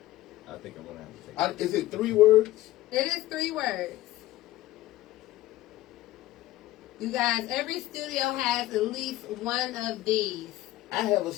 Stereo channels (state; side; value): quieter; right; 16.0 dB